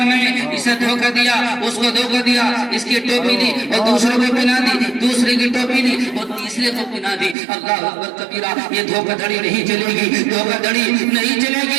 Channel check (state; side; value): drops out; left; at 7.4 s